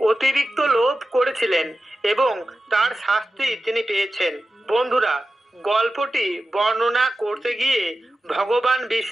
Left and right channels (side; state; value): both; normal; correlation 0.93